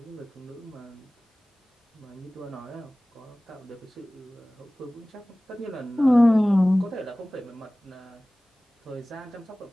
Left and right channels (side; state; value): both; normal; correlation 0.98